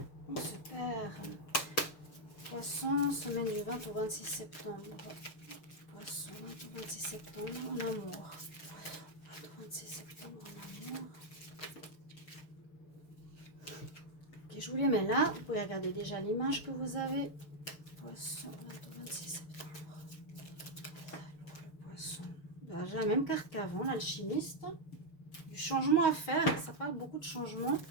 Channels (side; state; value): right; late; 6.7 ms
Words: on se perd. Poisson, semaine du 20 au 26 septembre. Poisson, 20 au 26 septembre, en amour. 20 au 26 septembre, en amour. Ok, je vous les mets là. Vous pouvez regarder déjà l'image que vous avez. Poisson, 20 au 26 septembre. Le poisson. Ben, j'ai la même carte qu'avant, l'alchimiste. Du changement à faire. Ça parle beaucoup de changement.